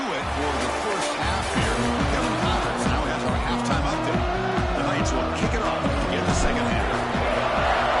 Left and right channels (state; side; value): identical; both; correlation 1.00